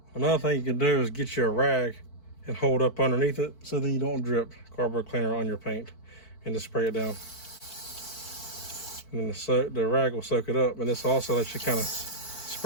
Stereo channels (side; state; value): right; late; 4.5 ms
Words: Another thing you can do is get you a rag and hold up underneath it so then you don't drip carburetor cleaner on your paint, and just spray it down. And then the rag will soak it up, and this also lets you kind of